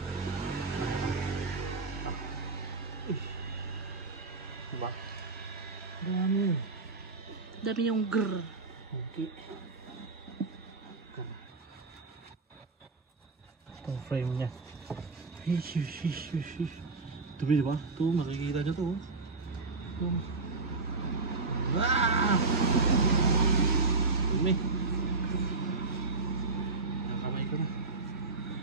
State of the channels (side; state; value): left; quieter; 3.9 dB